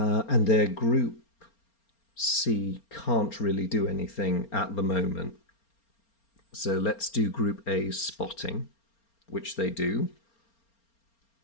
their Group C can't really do anything at the moment. So let's do Group A's spotting, which they do.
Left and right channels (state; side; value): late; right; 4.3 ms